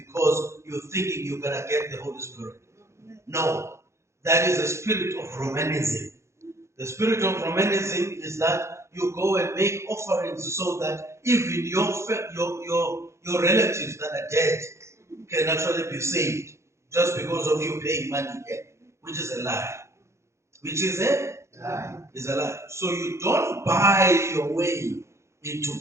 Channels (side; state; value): left; late; 0.14 ms